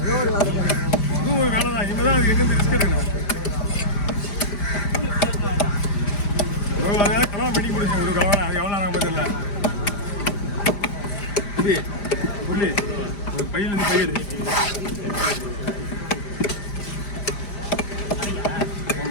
ஒரு வேலை தான் இனிமேல் தான் அது எங்கேருந்து ரிஸ்க் எடுக்கணும் அதனால கல்யாணம் பண்ணி கொடுங்க ஒரு கவனம் அது எவ்வளோ நாங்கள் தெரியல புள்ளி ஒரு பையிலேருந்து பயிர்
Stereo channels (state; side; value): late; right; 5.0 ms